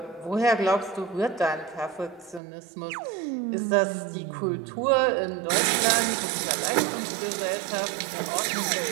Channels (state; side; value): drops out; left; at 2.4 s